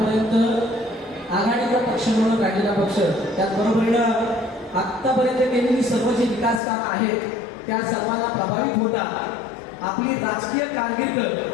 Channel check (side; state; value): right; drops out; at 6.6 s